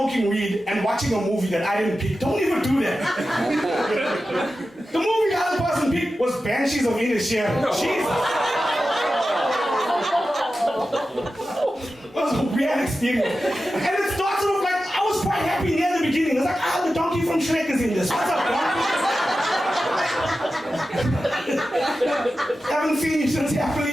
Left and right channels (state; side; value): normal; both; correlation 0.93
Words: weed and watching a movie that I didn't pick. Don't even do that. The movie the other person picked was Banshees of Inisherin. Jesus. It was a weird experience. And it started off like, I was quite happy near the beginning. It was like, the donkey from Shrek is in this. What's up, donkey? Haven't seen you since